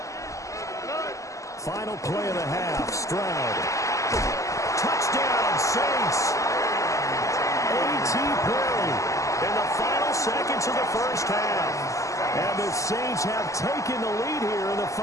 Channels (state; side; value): late; right; 0.16 ms